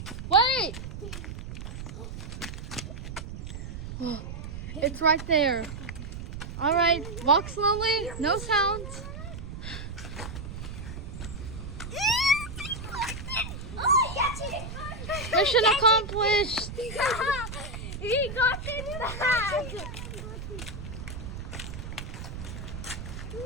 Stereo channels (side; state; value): right; noise; rumble, 8 dB below the sound